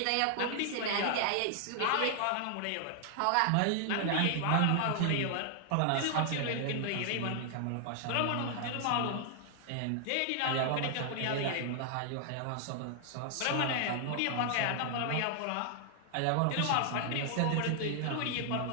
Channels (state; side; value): different; both; correlation 0.00